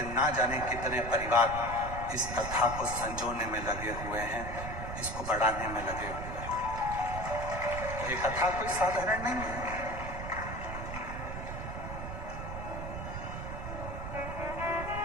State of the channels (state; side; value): noise; right; rumble, 6 dB below the sound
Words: ना जाने कितने परिवार इस कथा को संजोने में लगे हुए हैं, इसको बढ़ाने में लगे हुए हैं। ये कथा कोई साधारण नहीं है।